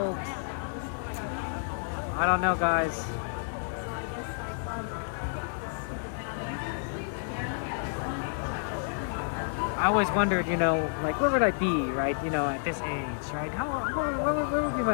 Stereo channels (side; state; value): right; silent; digital silence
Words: I don't know, guys. I always wondered, you know, like, where would I be, right, you know, at this age, right? Where would be